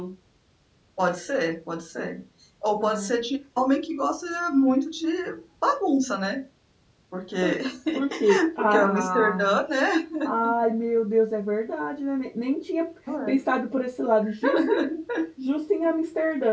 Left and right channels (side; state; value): both; identical; correlation 1.00